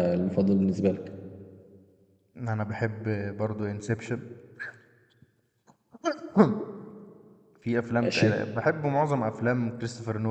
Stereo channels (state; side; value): identical; both; correlation 1.00